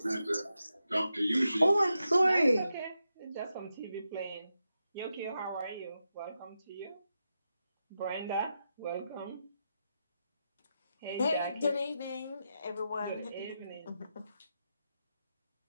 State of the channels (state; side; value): inverted; both; correlation -0.87